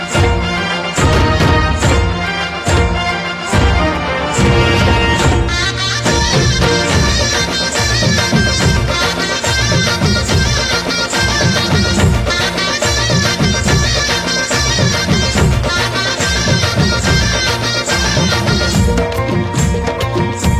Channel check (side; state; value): both; identical; correlation 1.00